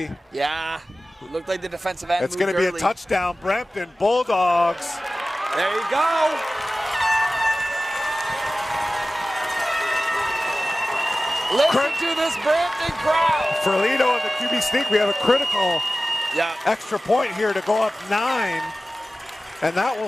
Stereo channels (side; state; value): both; normal; correlation 0.96